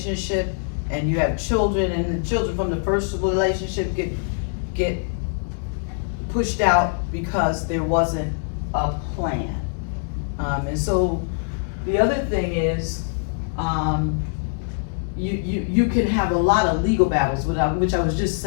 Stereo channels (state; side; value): silent; right; digital silence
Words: and you have children, and the children from the first relationship get pushed out because there wasn't a plan. And so the other thing is, you can have a lot of legal battles, which I was just